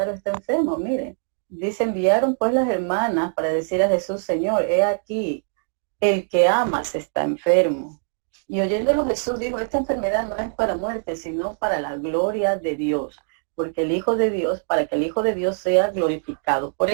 está enfermo, miren. Dice, enviaron pues las hermanas para decir a Jesús, Señor, he aquí, el que amas está enfermo. Y oyéndolo Jesús dijo, esta enfermedad no es para muerte, sino para la gloria de Dios, porque el Hijo de Dios, para que el Hijo de Dios sea glorificado por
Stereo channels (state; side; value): silent; left; digital silence